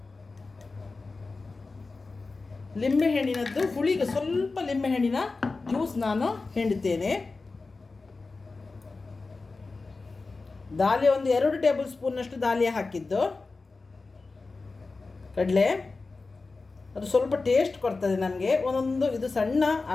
ಲಿಂಬೆಹಣ್ಣಿನದ್ದು ಹುಳಿಗೆ ಸ್ವಲ್ಪ ಲಿಂಬೆಹಣ್ಣಿನ ಜ್ಯೂಸ್ ನಾನು ಹಿಂಡ್ತೇನೆ. ದಾಲಿಯ ಒಂದು 2 ಟೇಬಲ್ ಸ್ಪೂನ್ನಷ್ಟು ದಾಲಿಯ ಹಾಕಿದ್ದು ಕಡಲೆ. ಅದು ಸ್ವಲ್ಪ ಟೇಸ್ಟ್ ಕೊಡ್ತದೆ ನಮಗೆ. ಒಂದೊಂದು ಇದು ಸಣ್ಣ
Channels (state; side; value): quieter; right; 3.8 dB